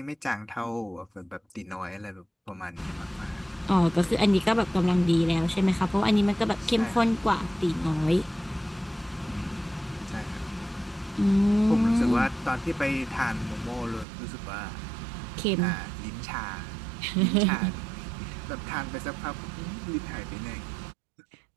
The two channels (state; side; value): drops out; left; at 14.1 s